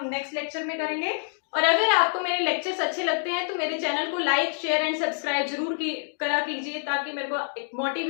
नेक्स्ट लेक्चर में करेंगे। और अगर आपको मेरे लेक्चर्स अच्छे लगते हैं तो मेरे चैनल को लाइक शेयर एंड सब्सक्राइब जरूर करा कीजिए, ताकि मेरे को एक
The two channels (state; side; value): silent; right; digital silence